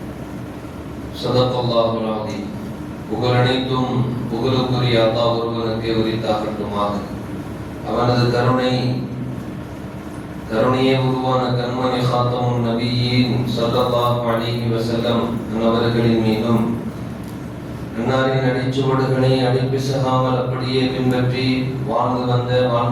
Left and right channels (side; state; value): both; identical; correlation 1.00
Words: صدق الله العظيم. புகழனைத்தும் புகழுக்குரிய அல்லாஹ் ஒருவனுக்கே உரித்தாகட்டுமாக. அவனது கருணையே உருவான கண்மணி காத்தமுன் நபியின் ஸல்லல்லாஹு அலைஹி வஸல்லம் அவர்களின் மீதும், அன்னாரின் அடிச்சுவடுகளை அடிப்பிசகாமல் அப்படியே பின்பற்றி